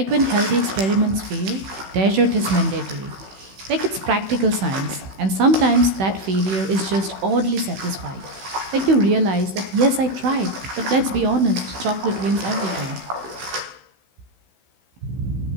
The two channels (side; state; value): left; late; 16 ms